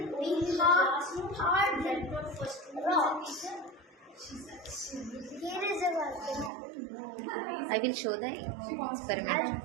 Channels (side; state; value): left; drops out; at 6.5 s